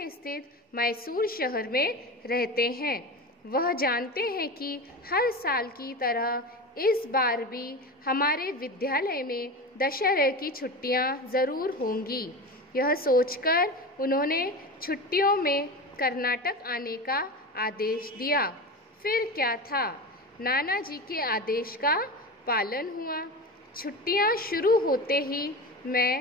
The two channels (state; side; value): normal; both; correlation 0.25